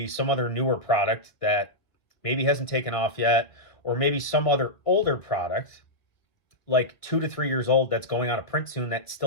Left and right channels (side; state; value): right; late; 1.8 ms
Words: some other newer product that maybe hasn't taken off yet, or maybe some other older product like 2 to 3 years old that's going out of print soon that